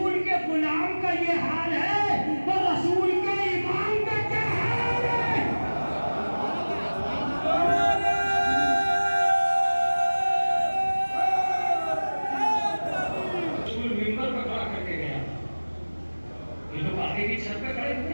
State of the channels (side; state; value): both; inverted; correlation -1.00